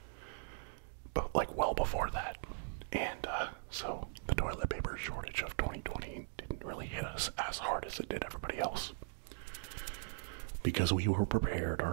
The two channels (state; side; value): silent; left; digital silence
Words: but like well before that. And so the toilet paper shortage of 2020 didn't really hit us as hard as it did everybody else. Because we were prepared,